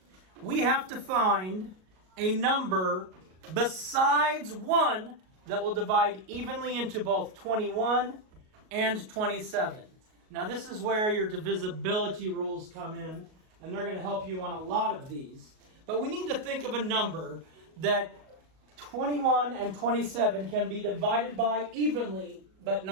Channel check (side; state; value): left; late; 38 ms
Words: we have to find a number besides 1 that will divide evenly into both 21 and 27. Now this is where your divisibility rules come in, and they're going to help you on a lot of these. But we need to think of a number that 21 and 27 can be divided by evenly, but